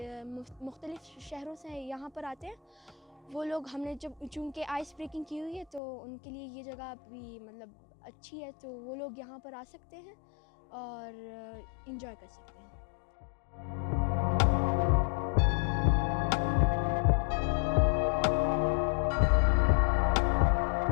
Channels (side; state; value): right; drops out; at 5.8 s